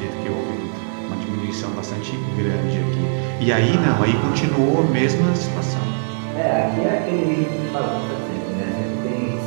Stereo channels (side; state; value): left; silent; digital silence